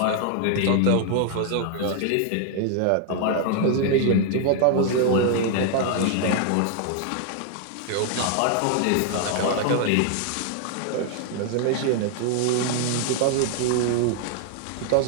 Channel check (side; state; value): both; different; correlation 0.00